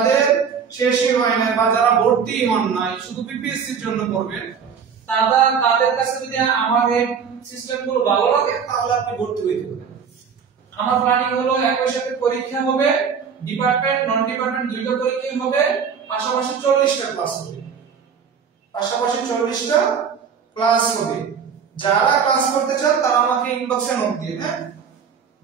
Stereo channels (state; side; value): quieter; left; 6.7 dB